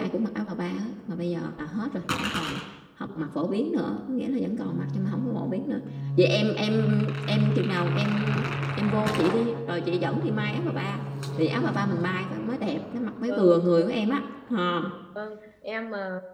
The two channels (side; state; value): both; identical; correlation 1.00